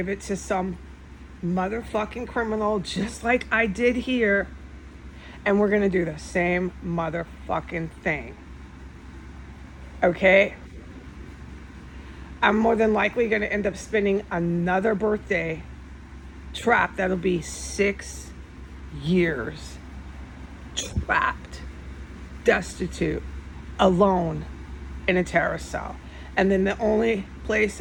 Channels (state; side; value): identical; both; correlation 1.00